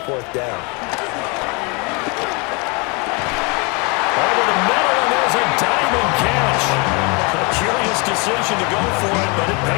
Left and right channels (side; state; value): right; quieter; 30.5 dB